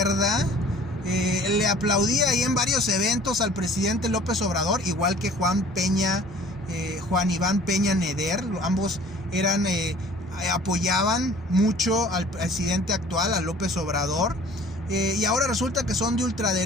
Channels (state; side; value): normal; both; correlation 0.50